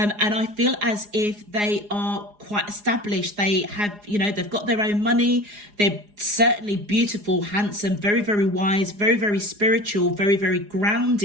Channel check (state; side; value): late; left; 4.8 ms